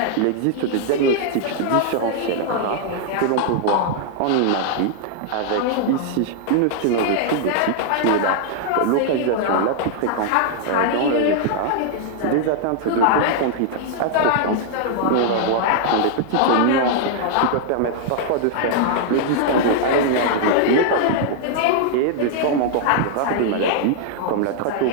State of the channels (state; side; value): different; both; correlation 0.00